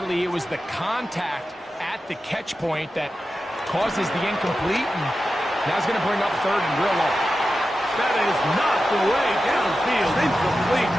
it was the contact at the catch point that causes the incomplete, and now it's going to bring up third and real low. That is knocked away downfield, incomplete.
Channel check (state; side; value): normal; both; correlation 0.92